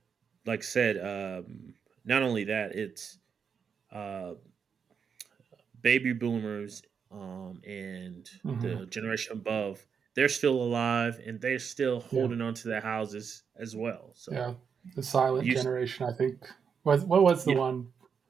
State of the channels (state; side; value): quieter; left; 6.6 dB